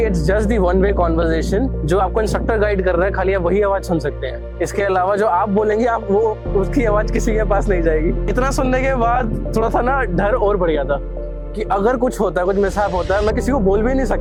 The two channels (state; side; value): identical; both; correlation 1.00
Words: it's just the one way conversation, जो आपको इंस्ट्रक्टर गाइड कर रहा है, खाली आप वही आवाज सुन सकते हैं। इसके अलावा जो आप बोलेंगे आप वो उसकी आवाज किसी के पास नहीं जाएगी। इतना सुनने के बाद थोड़ा सा ना डर और बढ़ गया था कि अगर कुछ होता है, कुछ मिसहैप होता है, मैं किसी को बोल भी नहीं